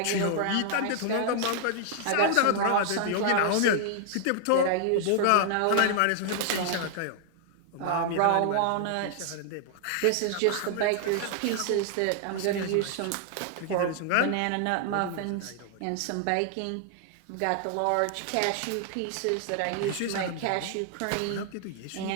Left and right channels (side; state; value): both; different; correlation 0.00